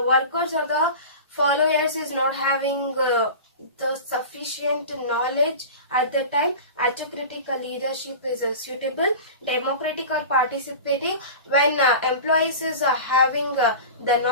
workers or the followers is not having the sufficient knowledge. At the time, autocratic leadership is suitable. Democratic or participating, when employees is having the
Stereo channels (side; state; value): both; inverted; correlation -0.33